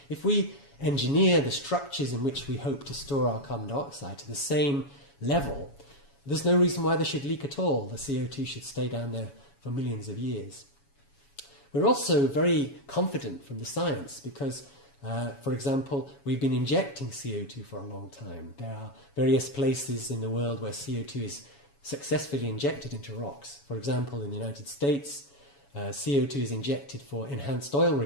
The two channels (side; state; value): right; late; 7.1 ms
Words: if we engineer the structures in which we hope to store our carbon dioxide to the same level, there's no reason why they should leak at all. The CO2 should stay down there for millions of years. We're also very confident from the science because, for example, we've been injecting CO2 for a long time. There are various places in the world where CO2 is successfully injected into rocks. For example, in the United States, CO2 is injected for enhanced oil